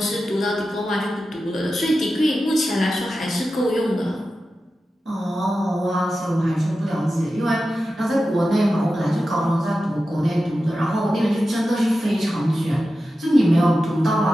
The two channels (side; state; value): both; normal; correlation 0.92